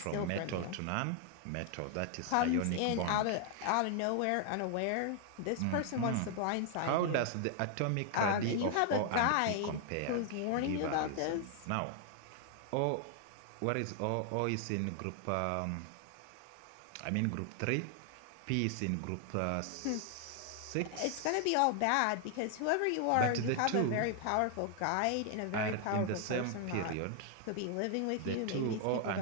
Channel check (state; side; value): different; both; correlation 0.00